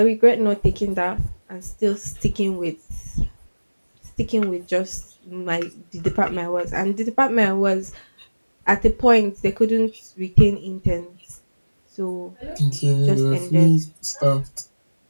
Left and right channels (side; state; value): both; inverted; correlation -1.00